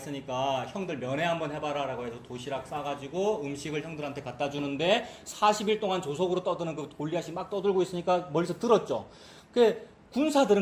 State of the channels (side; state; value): both; identical; correlation 1.00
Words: 형들 면회 한번 해봐라 라고 해서 도시락 싸가지고 음식을 형들한테 갖다 주는데 40일 동안 조석으로 떠드는 그 골리앗이 막 떠들고 있으니까 멀리서 들었죠. 그